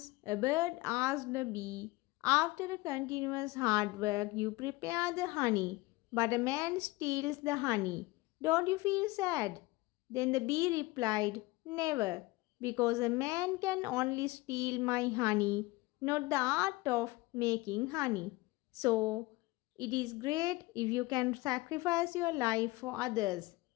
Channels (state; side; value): quieter; right; 21.1 dB